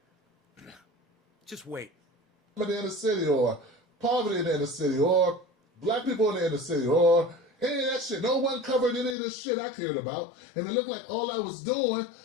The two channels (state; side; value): drops out; right; at 9.2 s